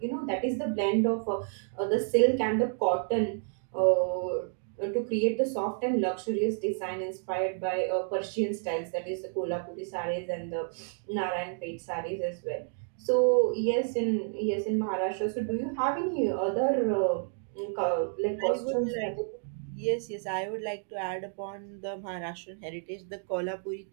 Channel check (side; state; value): left; silent; 57 dB below the other